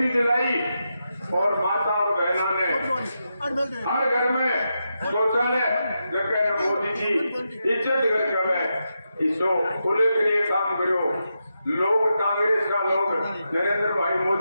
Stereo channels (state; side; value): inverted; both; correlation -0.86